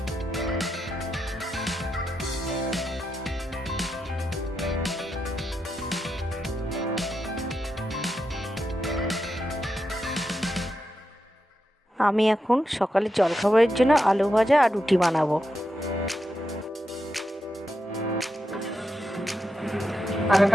আমি এখন সকালে জলখাবারের জন্য আলু ভাজা আর রুটি বানাবো।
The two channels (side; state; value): both; normal; correlation 0.86